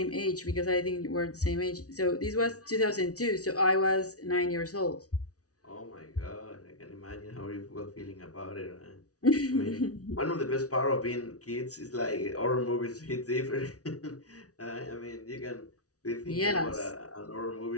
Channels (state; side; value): late; right; 0.67 ms